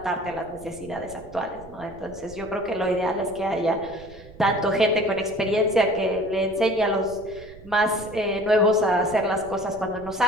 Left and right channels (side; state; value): right; noise; rumble, 20 dB below the sound